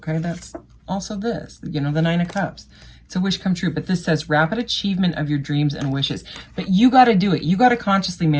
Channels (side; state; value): both; identical; correlation 1.00